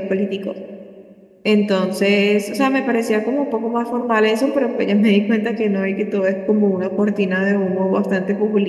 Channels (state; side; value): identical; both; correlation 1.00